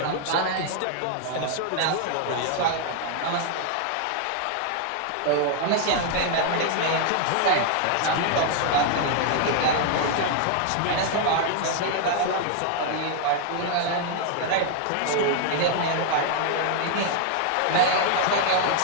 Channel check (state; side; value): different; both; correlation 0.00